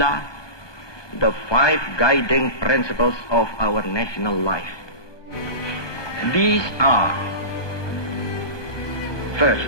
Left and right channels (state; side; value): late; right; 1.2 ms